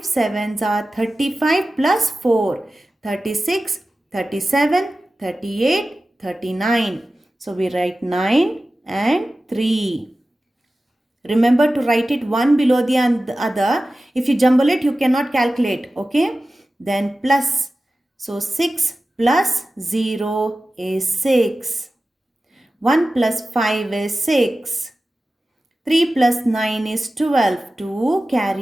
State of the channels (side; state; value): both; normal; correlation 0.95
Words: sevens are 35 plus 4. 36, 37, 38, 39. So we write 9 and 3. Remember to write it one below the other. If you jumble it, you cannot calculate. Okay. Then plus. So 6 plus 0 is 6. 1 plus 5 is 6. 3 plus 9 is 12. 2